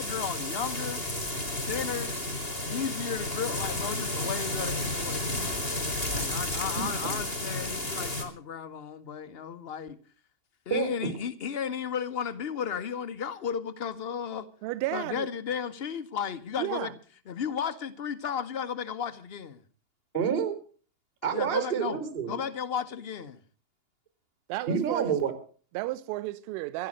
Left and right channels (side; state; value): right; late; 2.8 ms